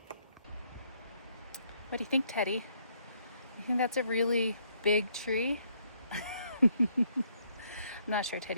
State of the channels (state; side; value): inverted; both; correlation -0.69